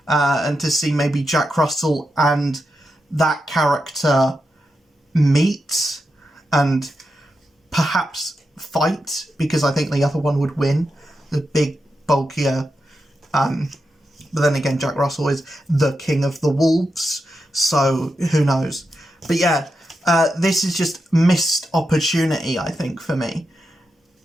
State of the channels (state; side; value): normal; both; correlation 0.87